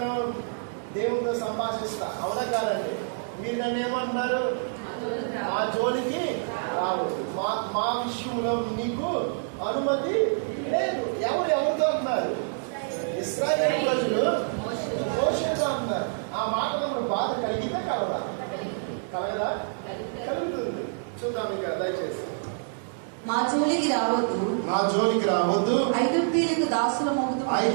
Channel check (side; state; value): left; silent; digital silence